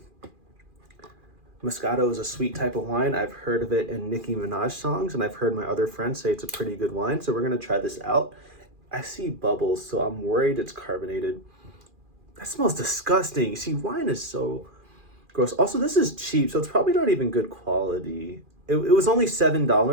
Moscato is a sweet type of wine. I've heard of it in Nicki Minaj songs, and I've heard my other friends say it's a pretty good wine. So we're gonna try this out. I see bubbles, so I'm worried it's carbonated. That smells disgusting. See, wine is so gross. Also, this is cheap, so it's probably not even good quality. It was only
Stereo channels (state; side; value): late; left; 2.4 ms